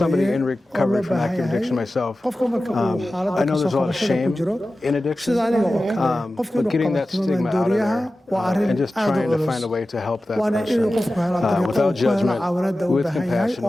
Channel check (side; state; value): both; normal; correlation 0.95